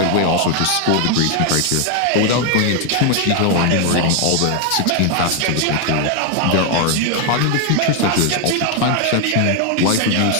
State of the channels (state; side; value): different; both; correlation 0.01